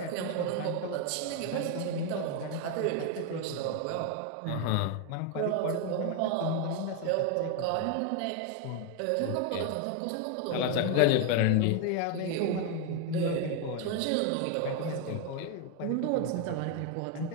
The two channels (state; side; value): different; both; correlation 0.01